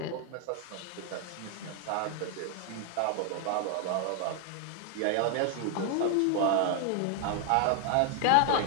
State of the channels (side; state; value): both; different; correlation 0.00